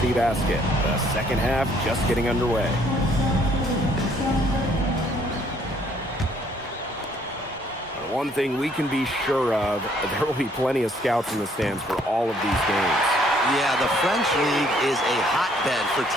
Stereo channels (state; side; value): normal; both; correlation 0.64